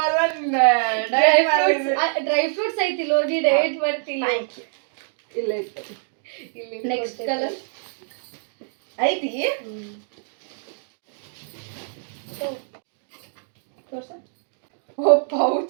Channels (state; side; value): silent; left; digital silence